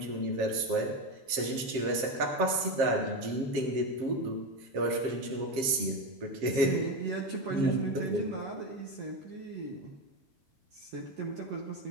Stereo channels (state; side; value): late; left; 7.6 ms